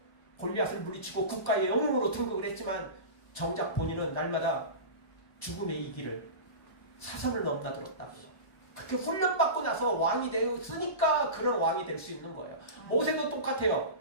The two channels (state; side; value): late; right; 1.3 ms